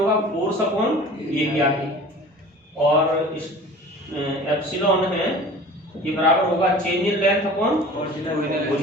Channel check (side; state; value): both; normal; correlation 0.42